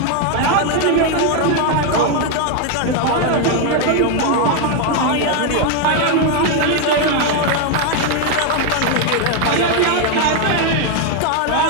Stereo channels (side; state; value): both; different; correlation 0.01